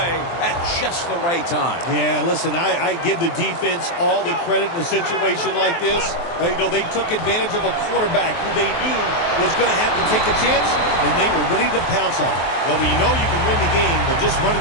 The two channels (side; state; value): right; late; 23 ms